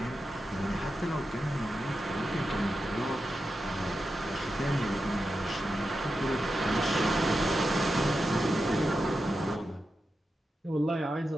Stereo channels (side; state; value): both; normal; correlation 0.90